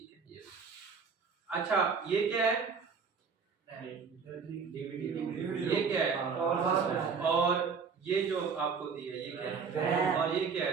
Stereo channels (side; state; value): left; quieter; 5.6 dB